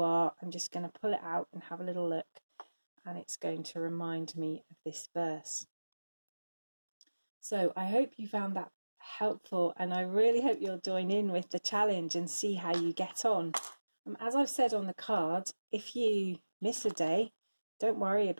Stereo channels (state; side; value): inverted; both; correlation -1.00